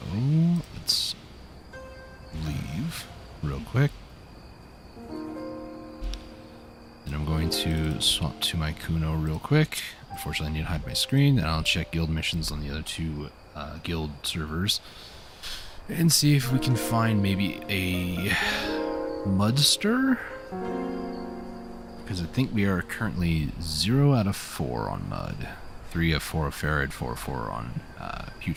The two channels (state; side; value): identical; both; correlation 1.00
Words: let's leave real quick. And I'm going to swap to my Kuno real quick. Unfortunately, I need to hide my screen. And I'll check guild missions on the other two guild servers. And see if we can find maybe a Mudster. Because I think we are currently 0 out of 4 on Mud. 3 of 4 of Farad, 4 of 4 on